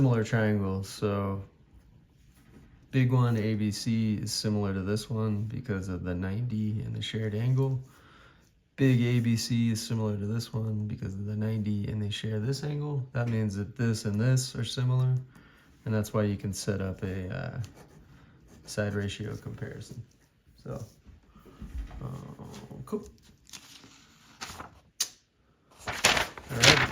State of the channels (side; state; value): both; identical; correlation 1.00